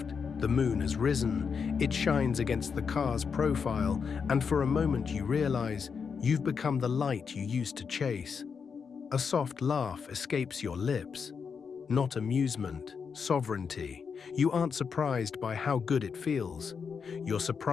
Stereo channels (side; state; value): right; quieter; 6.0 dB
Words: The moon has risen. It shines against the car's profile, and for a moment you realize you've become the light you used to chase. A soft laugh escapes your lips. Not amusement, sovereignty. You aren't surprised by how good it feels. You're